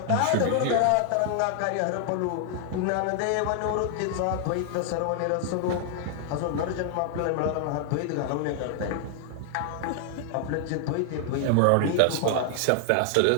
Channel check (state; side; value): different; both; correlation 0.00